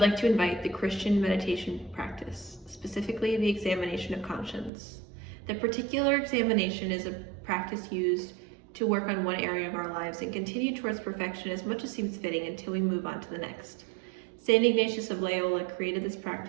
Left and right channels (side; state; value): left; drops out; at 4.7 s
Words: to invite the Christian meditation practice, specifically the examination of conscience. The particular examination is a practice used to work on one area of our lives and continue towards perfection as much as seems fitting until we move on to the next. St. Ignatius of Loyola created this